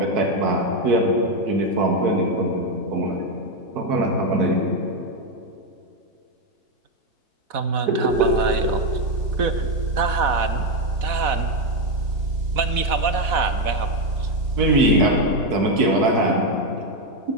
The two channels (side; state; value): left; late; 4.1 ms